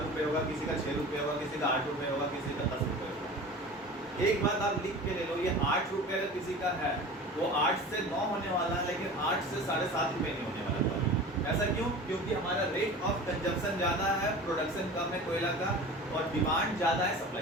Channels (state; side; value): normal; both; correlation 0.37